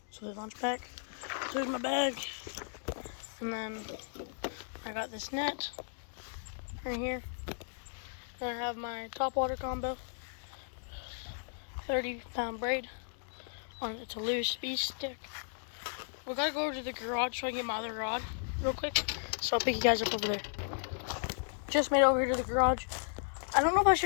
So they launch back. There's my bag, and then I got this net right here. Then I have my top water combo, 30-pound braid on it's a loose speed stick. We gotta go over to the garage so I can get my other rod real quick. So I'll pick you guys up over there. Just made it over here to the garage. I don't know if I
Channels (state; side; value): silent; right; digital silence